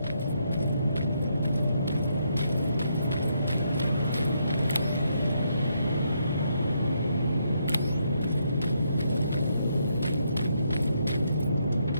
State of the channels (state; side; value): inverted; both; correlation -0.76